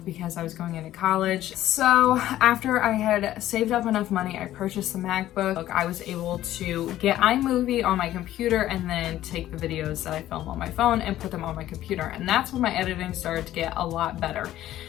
because I was going into college. So after I had saved up enough money, I purchased the MacBook. I was able to get iMovie on my computer and then take the videos that I film on my phone and put them on my computer. And that's when my editing started to get a lot better.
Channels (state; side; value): quieter; right; 13.5 dB